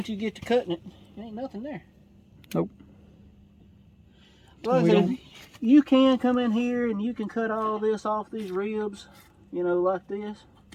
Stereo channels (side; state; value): both; identical; correlation 1.00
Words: you get to cutting it, there ain't nothing there. Nope. Like I said, you can come in here and you can cut all this off these ribs, like this.